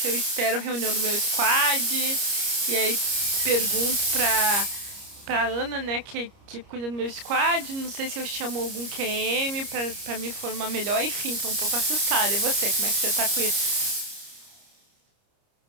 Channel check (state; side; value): late; left; 30 ms